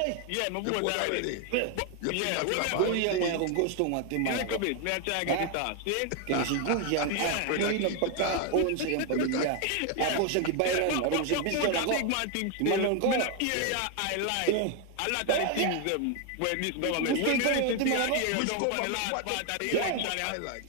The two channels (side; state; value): both; different; correlation 0.01